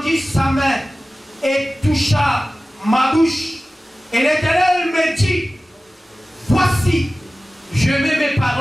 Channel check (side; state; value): both; normal; correlation 0.96